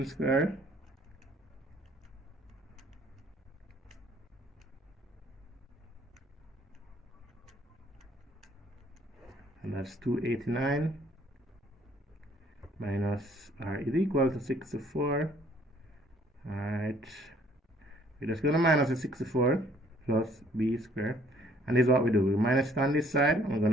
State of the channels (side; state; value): both; normal; correlation 0.61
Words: squared, and that's 289 minus r is equal to 64. Alright, we're just going to minus the 64 plus b squared, And this is what we do. We minus it on this side, and we're